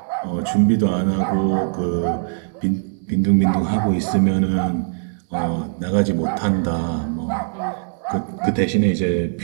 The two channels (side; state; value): left; silent; 62 dB below the other